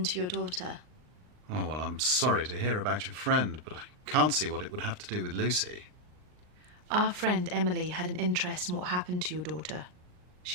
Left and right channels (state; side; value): late; left; 39 ms